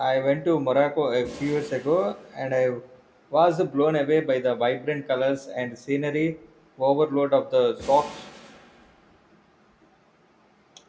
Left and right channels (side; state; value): both; identical; correlation 1.00